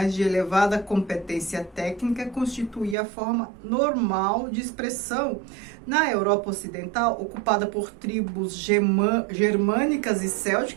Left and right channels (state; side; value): drops out; left; at 3.0 s